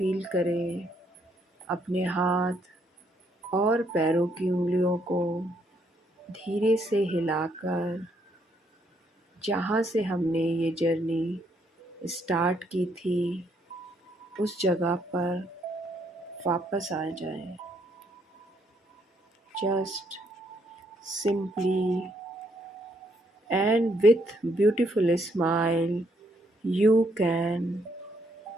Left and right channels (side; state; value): both; normal; correlation 0.72